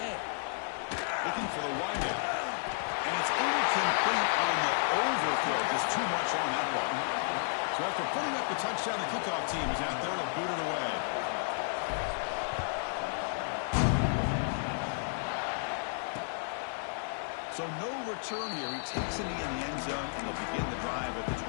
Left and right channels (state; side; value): silent; right; digital silence